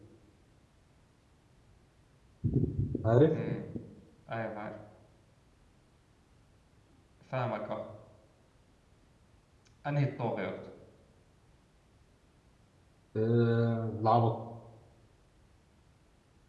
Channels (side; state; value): both; identical; correlation 1.00